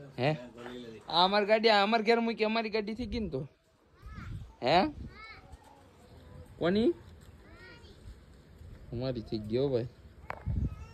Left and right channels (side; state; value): both; identical; correlation 1.00